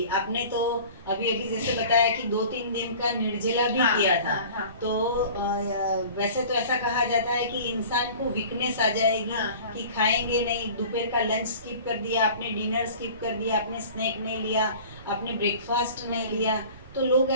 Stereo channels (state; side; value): inverted; both; correlation -0.43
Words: आपने तो अभी अभी जैसे बताया कि 2-3 दिन का निर्जला भी हाँ, किया था। हाँ, हाँ। तो वैसे तो ऐसा कहा जाता है कि इंसान को वीकनेस आ जाएगी, हाँ, हाँ। कि खाएंगे नहीं, दोपहर का लंच स्किप कर दिया आपने, डिनर स्किप कर दिया आपने, स्नैक नहीं लिया आपने, ब्रेकफास्ट नहीं लिया, तो लोग